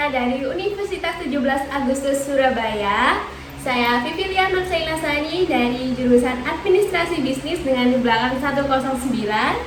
dari Universitas 17 Agustus Surabaya. Saya Vivilia Nursailasani dari jurusan Administrasi Bisnis dengan di belakang 109.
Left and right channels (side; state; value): both; identical; correlation 1.00